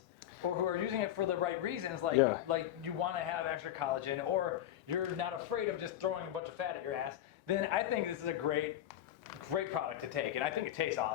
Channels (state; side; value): quieter; right; 11.9 dB